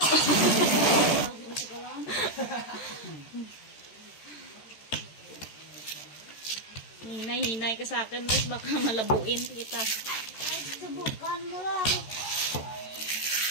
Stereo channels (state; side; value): late; right; 13 ms